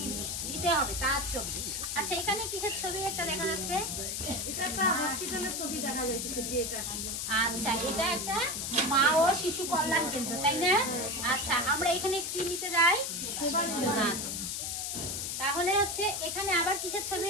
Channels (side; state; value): left; noise; hiss, 3 dB below the sound